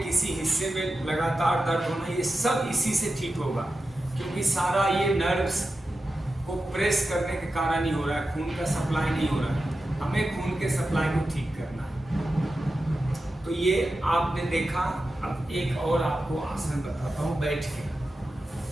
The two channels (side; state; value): both; normal; correlation 0.92